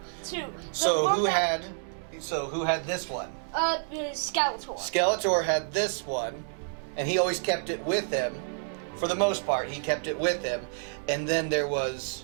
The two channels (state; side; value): silent; left; digital silence